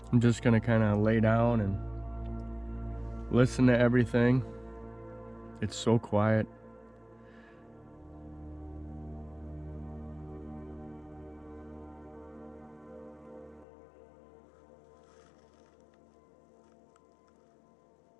I'm just gonna kind of lay down and listen to everything. It's so quiet.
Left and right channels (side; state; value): right; drops out; at 13.7 s